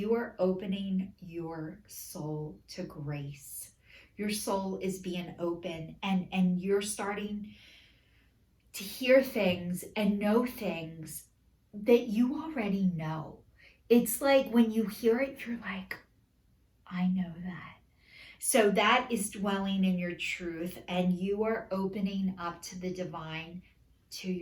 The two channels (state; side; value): identical; both; correlation 1.00